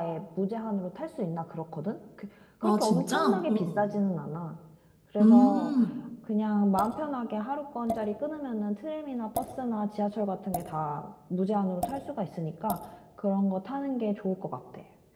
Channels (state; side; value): identical; both; correlation 1.00